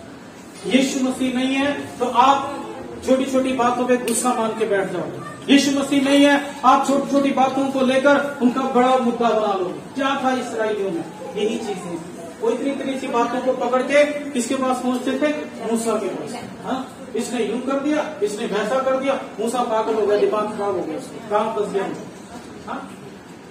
यीशु मसीह नहीं है तो आप छोटी छोटी बातों पे गुस्सा मान के बैठ जाओगे। यीशु मसीह नहीं है, आप छोटी छोटी बातों को लेकर उनका बड़ा मुद्दा बना लोगे। क्या था इस्राएलियों में? यही चीजें। वो इतनी इतनी सी बातों को पकड़ के किसके पास पहुंचते थे? मूसा के पास। हाँ, इसने यूं कर दिया, इसने वैसा कर दिया, मूसा पागल हो गया, दिमाग खराब हो गया। कहां फंस गया मैं? हाँ,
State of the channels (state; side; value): identical; both; correlation 1.00